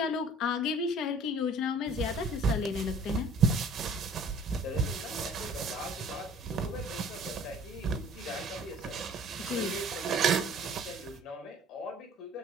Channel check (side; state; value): both; normal; correlation 0.52